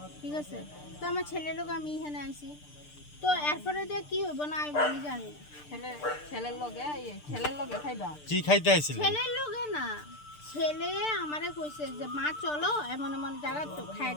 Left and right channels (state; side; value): late; right; 6.7 ms